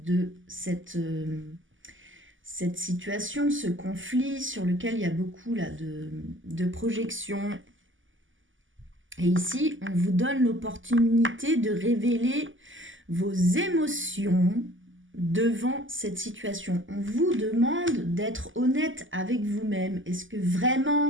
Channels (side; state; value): left; late; 0.57 ms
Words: cette situation, ce conflit sur lequel il y a beaucoup là, de projections. Et ici, on vous donne l'opportunité de révéler vos émotions devant cette situation. On vous demande d'être honnête avec vous-même. Est-ce que